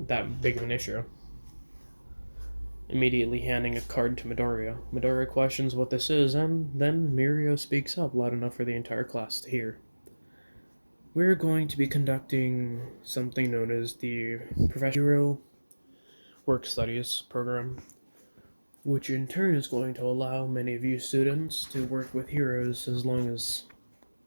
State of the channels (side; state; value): both; inverted; correlation -1.00